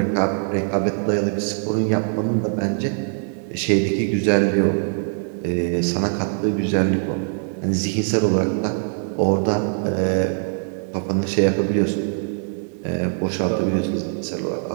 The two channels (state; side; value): silent; left; 64 dB below the other